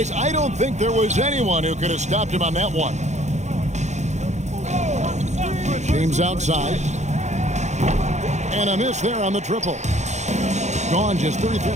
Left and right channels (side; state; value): left; late; 0.33 ms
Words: I don't think there was anyone who could have stopped him on that one. James outside. And a miss there on the triple. Gone just